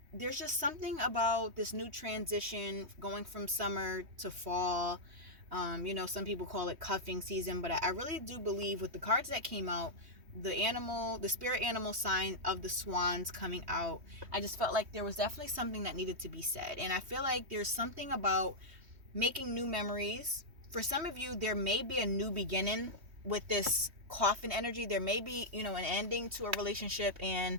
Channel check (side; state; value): left; late; 3.2 ms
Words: there's just something about this new transition going from summer to fall. Some people call it cuffing season, but I really do believe with the cards that came out, the spirit animal sign of the swans coming out, I just felt like there was definitely something that needed to be said. And I feel like there's something about making new memories. For some of you, there may be a new beginning with this coffin energy. There may be, an ending to a relationship and